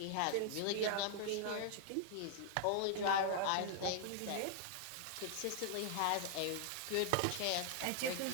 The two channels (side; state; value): both; different; correlation 0.00